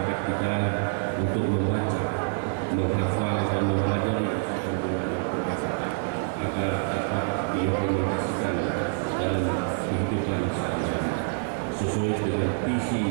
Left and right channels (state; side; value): silent; left; digital silence